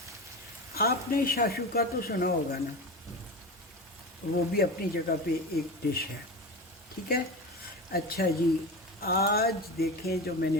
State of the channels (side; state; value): both; normal; correlation 0.26